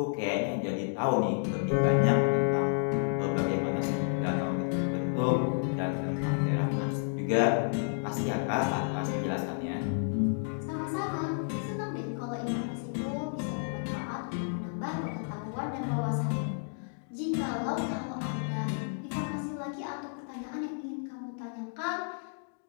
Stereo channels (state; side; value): silent; right; digital silence